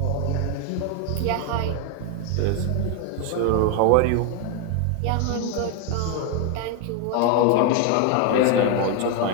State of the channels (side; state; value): both; different; correlation 0.01